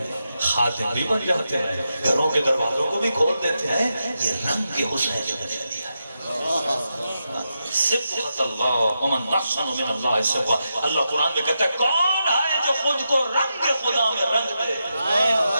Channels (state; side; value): inverted; both; correlation -0.86